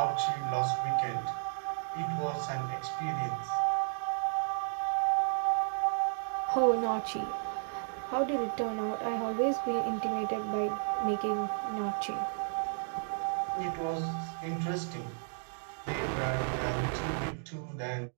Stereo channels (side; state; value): left; silent; digital silence